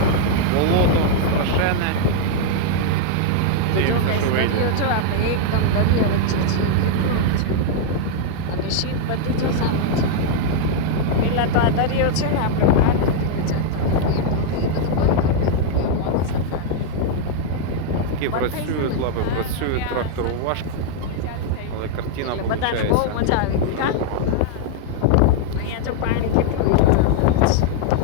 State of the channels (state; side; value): different; both; correlation 0.00